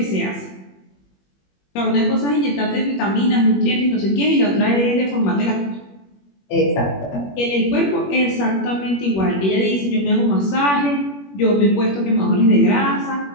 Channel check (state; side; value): late; right; 21 ms